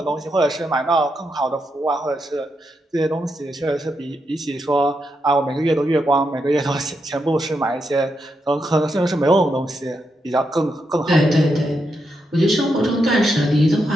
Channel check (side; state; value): both; normal; correlation 0.83